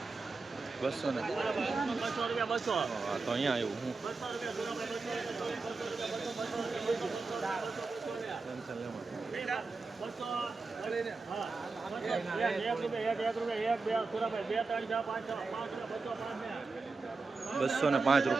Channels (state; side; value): quieter; left; 4.0 dB